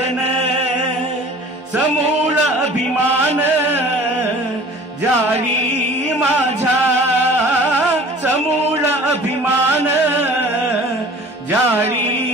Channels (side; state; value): both; normal; correlation 0.46